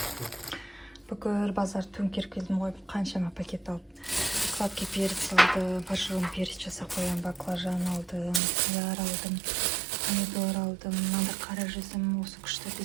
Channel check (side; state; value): left; drops out; at 8.4 s